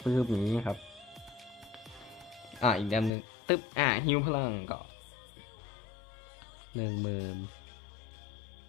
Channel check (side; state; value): right; drops out; at 3.1 s